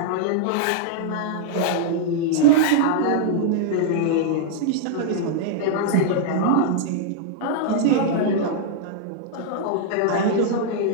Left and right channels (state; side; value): different; both; correlation -0.01